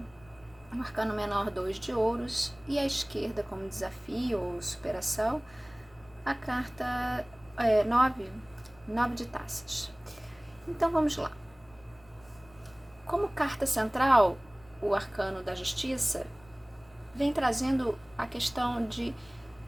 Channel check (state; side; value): noise; left; rumble, 27 dB below the sound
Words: o Arcano Menor 2 de Ouros, e à esquerda como desafio ou superação, a carta 9 de Taças. Então vamos lá. Como carta central, o Arcano da Justiça vem trazendo a questão de